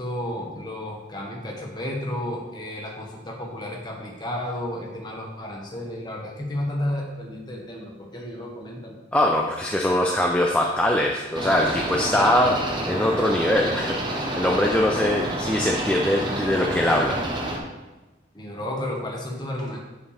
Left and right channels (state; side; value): normal; both; correlation 0.61